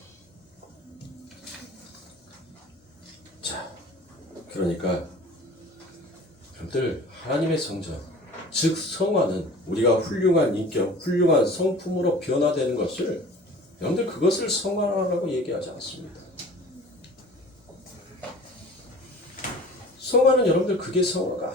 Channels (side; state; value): both; normal; correlation 0.43